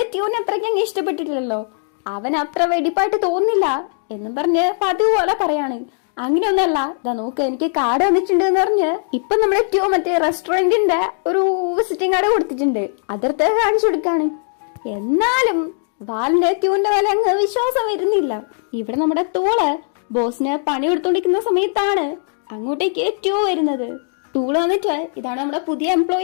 ട്യൂനെ അത്രയ്ക്ക് അങ്ങ് ഇഷ്ടപ്പെട്ടിട്ടില്ലല്ലോ, അവൻ അത്ര വെടിപ്പായിട്ട് തോന്നുന്നില്ല എന്നും പറഞ്ഞ് പതിവ് പോലെ പറയാണ്. അങ്ങനെയൊന്നല്ല, ഇതാ നോക്ക് എനിക്ക് കാർഡ് വന്നിട്ടുണ്ട് എന്ന് പറഞ്ഞ് ഇപ്പൊ നമ്മുടെ ട്യൂ മറ്റേ റെസ്റ്റോറന്റിന്റെ ഒരു വിസിറ്റിംഗ് കാർഡ് കൊടുത്തിട്ടുണ്ട്, അതിർത്ത് കാണിച്ചു കൊടുക്കാണ്. എന്നാലും വാലിന്റെ ട്യൂന്റെ വില അങ്ങ് വിശ്വാസം വരുന്നില്ല. ഇവിടെ നമ്മുടെ തൂള് ബോസിന് പണി കൊടുത്തോണ്ടിരിക്കുന്ന സമയത്താണ് അങ്ങോട്ടേക്ക് ട്യൂ വരുന്നത്. തൂള് വന്നിട്ട് ഇതാണ് നമ്മുടെ പുതിയ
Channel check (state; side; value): silent; right; digital silence